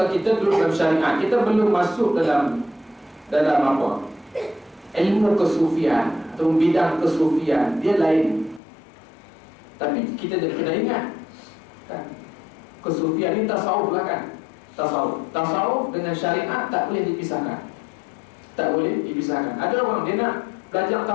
kita duduk dalam syariat, kita belum masuk dalam apa? Ilmu kesufian atau bidang kesufian, dia lain. Tapi kita kena ingat kan? Kesufian ini tasawuf lah kan? Tasawuf dengan syariat tak boleh dipisahkan. Tak boleh dipisahkan. Ada orang dia nak belajar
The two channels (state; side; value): drops out; right; at 8.6 s